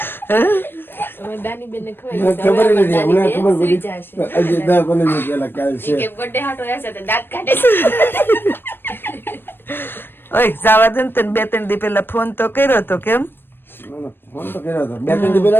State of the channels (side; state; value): right; late; 0.099 ms